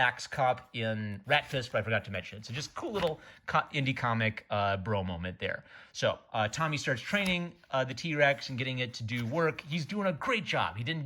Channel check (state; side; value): identical; both; correlation 1.00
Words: Cop in Rat Fist, but I forgot to mention it. So just cool little indie comic bro moment there. So Tommy starts training the T-Rex and getting it to do work. He's doing a great job. He didn't